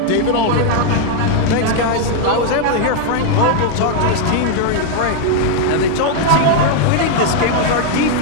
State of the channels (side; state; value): both; different; correlation 0.00